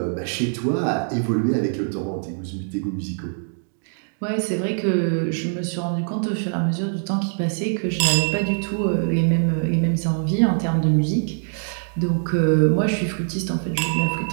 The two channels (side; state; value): left; silent; digital silence